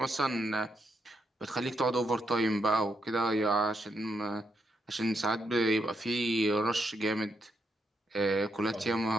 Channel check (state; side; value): normal; both; correlation 0.80